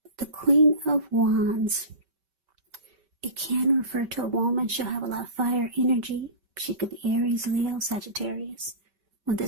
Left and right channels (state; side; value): late; left; 5.2 ms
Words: the Queen of Wands, it can refer to a woman. She'll have a lot of fire energy. She could be Aries, Leo, Sagittarius. When